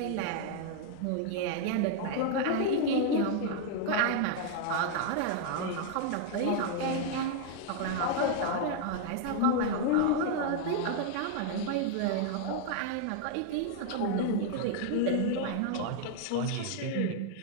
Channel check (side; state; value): both; different; correlation 0.00